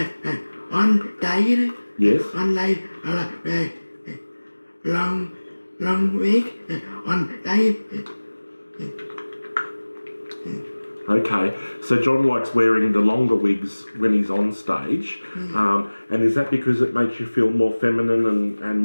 one day. Yes. One day I like wear long wig. One day. Okay, so John likes wearing the longer wigs when he's on stage, and is that because it makes you feel more feminine and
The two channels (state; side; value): inverted; both; correlation -1.00